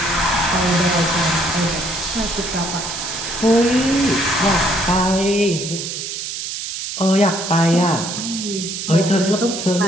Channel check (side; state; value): right; noise; hiss, 6 dB below the sound